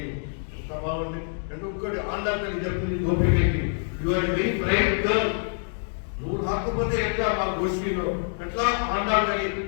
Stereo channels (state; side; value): silent; right; digital silence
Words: బాగుంది అంటే ఒక్కటి ఆండాల్ తల్లి చెప్తుంది గోపికకి you are very bright girl, నువ్వు రాకపోతే ఎట్లా మా గోష్ఠిలో ఎట్లా ఆండాల్ తల్లి